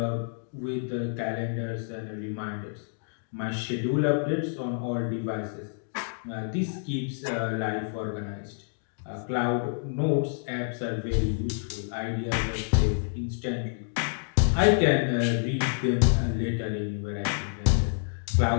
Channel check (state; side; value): silent; right; digital silence